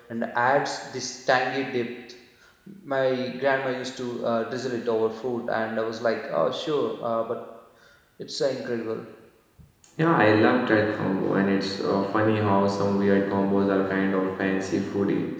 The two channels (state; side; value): identical; both; correlation 1.00